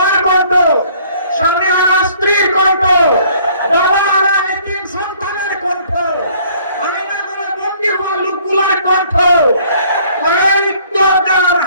কণ্ঠ, স্বামী হারা স্ত্রীর কণ্ঠ, বাবা হারা এতিম সন্তানের কণ্ঠ, লোকগুলোর কণ্ঠ,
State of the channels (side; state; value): both; inverted; correlation -0.59